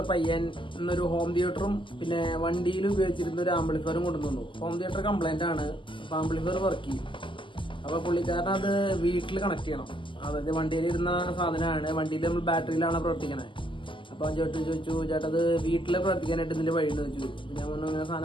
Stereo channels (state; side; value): late; right; 0.25 ms